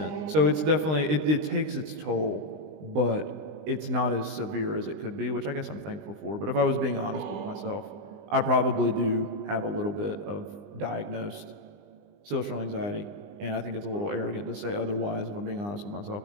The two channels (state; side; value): late; left; 20 ms